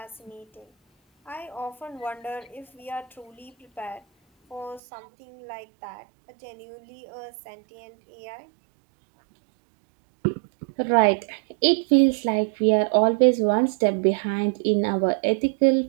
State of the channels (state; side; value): drops out; left; at 4.8 s